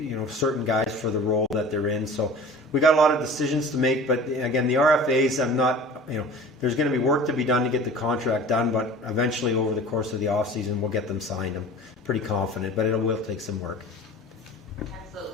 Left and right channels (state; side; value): normal; both; correlation 0.41